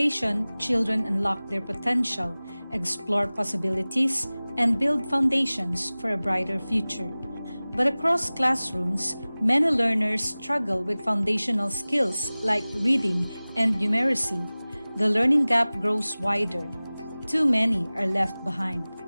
children unlock their potential, explore possibilities, and build foundations for a brighter future. But across classrooms, many learners struggle with foundational skills like reading and numeracy. The learning gap grows wider. Too many are left behind.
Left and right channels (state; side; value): inverted; both; correlation -0.99